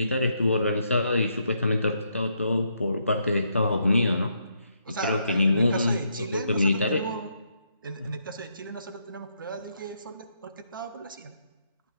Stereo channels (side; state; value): both; inverted; correlation -0.76